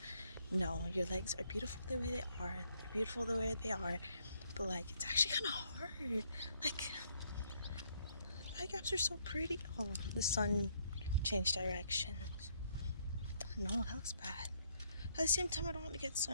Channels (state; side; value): inverted; both; correlation -0.70